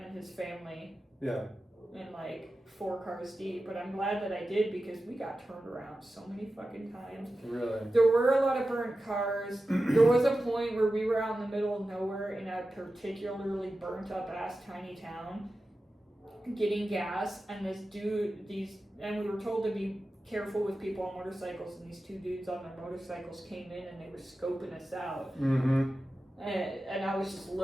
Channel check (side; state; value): both; normal; correlation 0.93